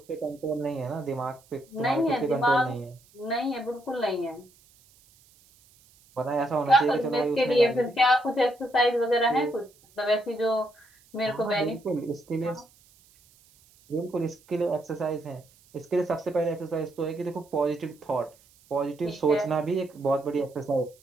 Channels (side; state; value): right; noise; hiss, 29 dB below the sound